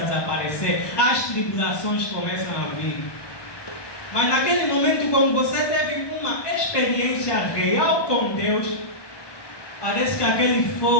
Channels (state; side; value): late; right; 1.2 ms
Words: desaparecer. As tribulações começam a vir. Mas naquele momento, quando você teve uma experiência real com Deus, parece que aquele